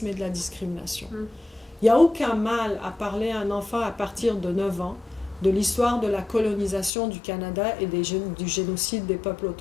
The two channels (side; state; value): right; drops out; at 6.9 s